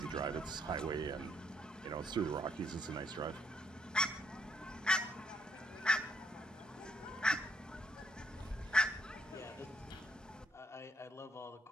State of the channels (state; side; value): normal; both; correlation 0.71